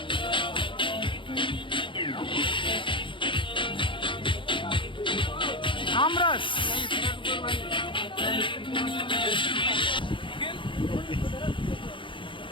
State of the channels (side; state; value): right; late; 0.24 ms